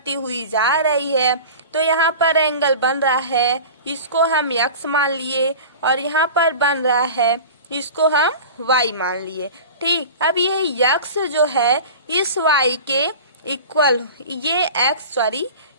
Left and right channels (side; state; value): both; inverted; correlation -0.36